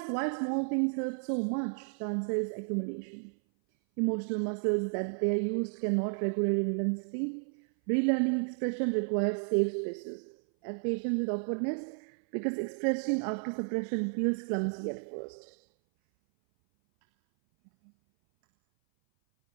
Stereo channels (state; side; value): silent; left; 56 dB below the other